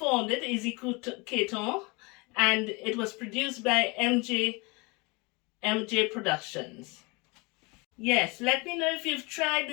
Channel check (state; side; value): quieter; right; 27.4 dB